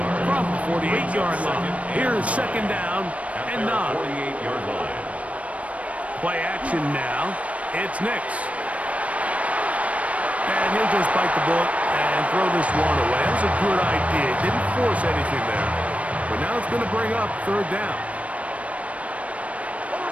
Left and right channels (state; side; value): late; left; 0.065 ms